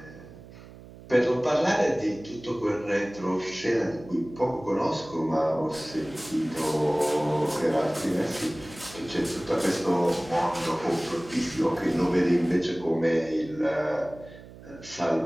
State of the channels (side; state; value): right; noise; hum, 18 dB below the sound